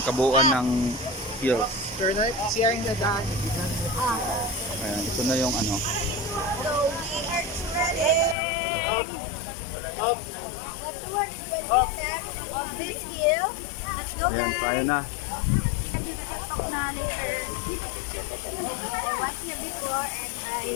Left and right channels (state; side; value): drops out; right; at 8.3 s